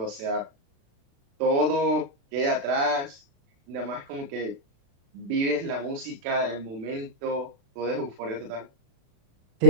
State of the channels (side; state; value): left; late; 36 ms